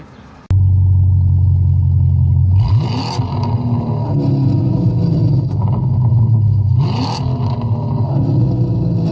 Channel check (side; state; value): both; identical; correlation 1.00